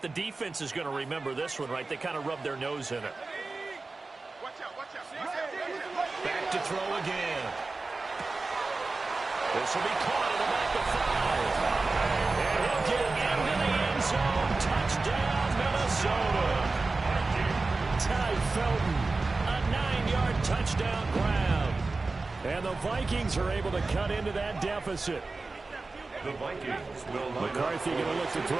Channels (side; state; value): left; quieter; 3.6 dB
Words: the defense is going to remember this one, right? They kind of rubbed their nose in it. Back to throw again. This will be caught at about the 5. And he'll get into the end zone. Touchdown, Minnesota. Ty Felton, a 9-yard touchdown grab. And the Vikings are able to cut into that deficit. The Vikings will McCarthy going to look to